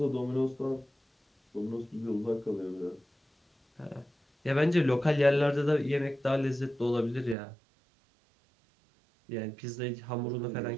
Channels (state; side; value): drops out; left; at 7.4 s